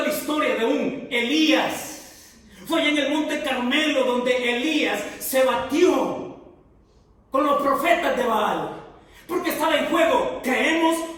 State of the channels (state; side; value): identical; both; correlation 1.00